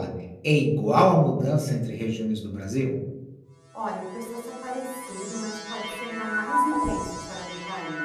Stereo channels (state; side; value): identical; both; correlation 1.00